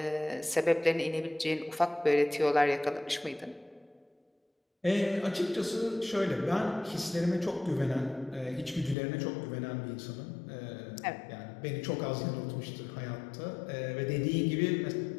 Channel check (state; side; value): drops out; right; at 9.0 s